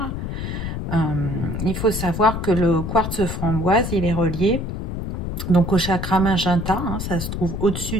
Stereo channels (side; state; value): left; noise; rumble, 4 dB below the sound